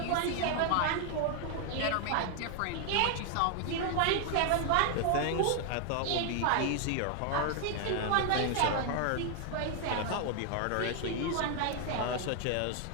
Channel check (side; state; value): both; different; correlation 0.00